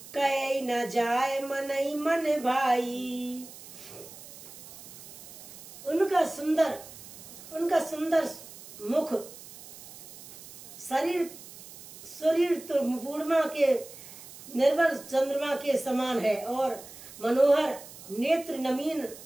कहे न जाए मनई मन भाई। उनका सुंदर मुख शरीर तो पूर्णिमा के निर्मल चंद्रमा के समान है और मनोहर नेत्र नमीन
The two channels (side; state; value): right; noise; hiss, 16 dB below the sound